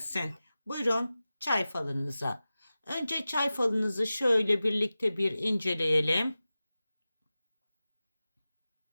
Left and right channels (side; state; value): both; inverted; correlation -0.95